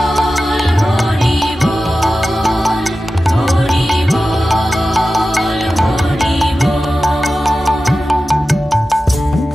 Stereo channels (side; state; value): both; normal; correlation 0.94